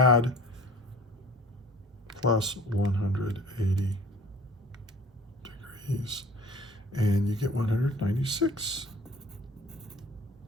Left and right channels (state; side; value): normal; both; correlation 0.47